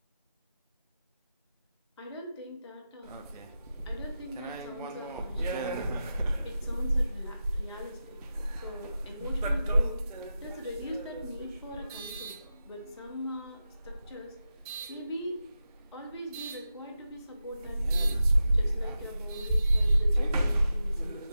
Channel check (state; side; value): inverted; both; correlation -0.91